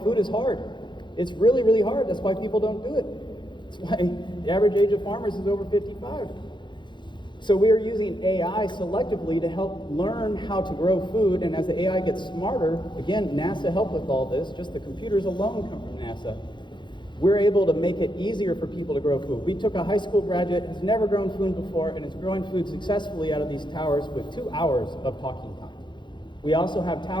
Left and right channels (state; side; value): late; right; 0.23 ms